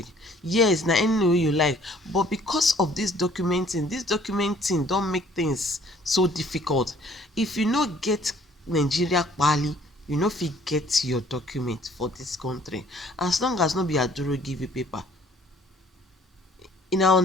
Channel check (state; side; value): normal; both; correlation 0.58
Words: Yes, na any name wey you like, but because of this documenting don make things so difficult. If you no get Nigeria pali, you no fit get your document for this country, as long as no be Aduro give you paper. You now